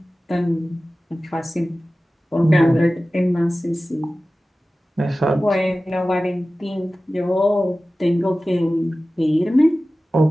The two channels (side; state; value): both; normal; correlation 0.96